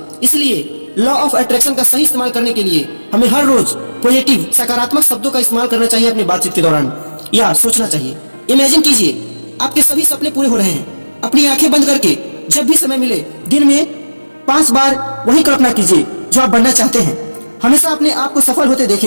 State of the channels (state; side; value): inverted; both; correlation -1.00